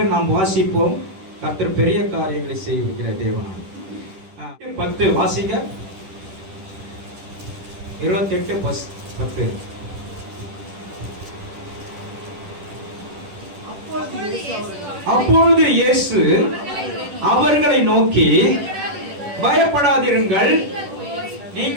நாம் வாசிப்போம், கர்த்தர் பெரிய காரியங்களை செய்கிற தேவனாய். 10 வாசிங்க. 28:10. அப்பொழுது இயேசு அவர்களை நோக்கி, பயப்படாதிருங்கள்,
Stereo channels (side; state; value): left; late; 10 ms